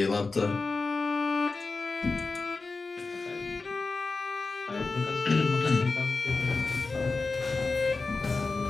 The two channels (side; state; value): right; quieter; 3.9 dB